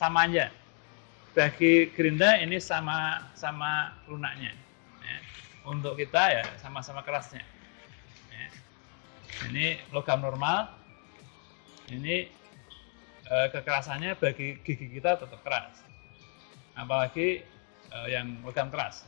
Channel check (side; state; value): right; quieter; 40.0 dB